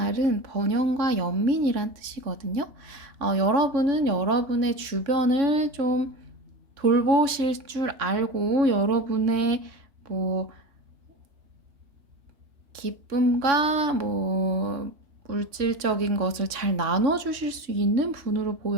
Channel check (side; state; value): left; late; 3.6 ms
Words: 번영과 연민이란 뜻이거든요. 여러분은 여러분의 주변을 좀 돌보실 줄 알고 여러분의 뭐 기쁨과 뭐 물질적인 것을 잘 나눠주실 수 있는 분으로